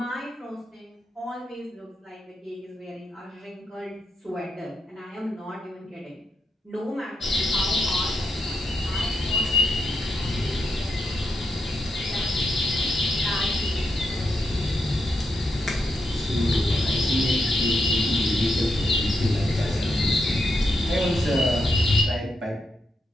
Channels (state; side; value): normal; both; correlation 0.83